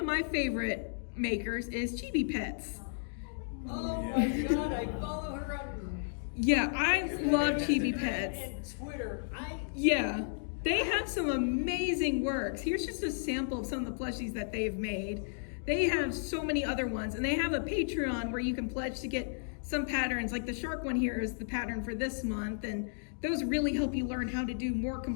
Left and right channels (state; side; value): silent; right; digital silence